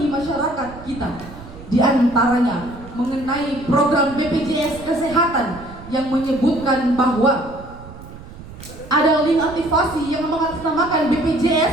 masyarakat kita. Di antaranya mengenai program BPJS Kesehatan yang menyebutkan bahwa ada link aktivasi yang mengatasnamakan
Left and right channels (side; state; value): right; noise; rumble, 16 dB below the sound